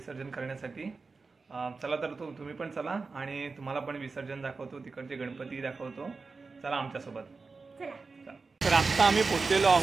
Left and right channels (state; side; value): quieter; left; 4.2 dB